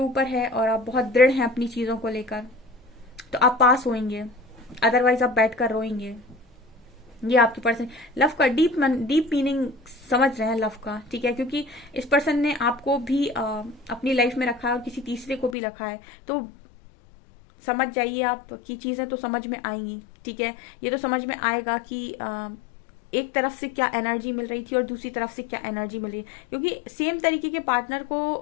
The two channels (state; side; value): drops out; right; at 15.6 s